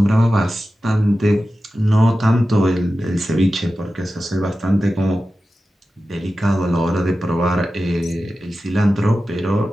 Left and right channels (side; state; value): both; normal; correlation 0.93